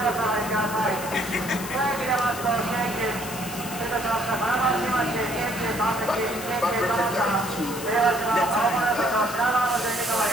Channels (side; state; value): left; noise; hiss, 11 dB below the sound